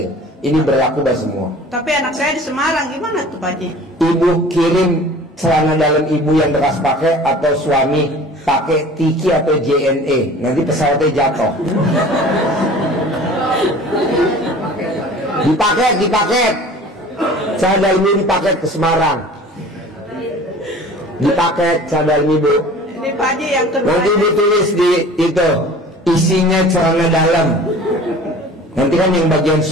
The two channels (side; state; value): both; normal; correlation 0.44